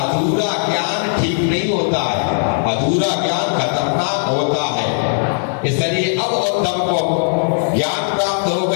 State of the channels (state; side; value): silent; right; digital silence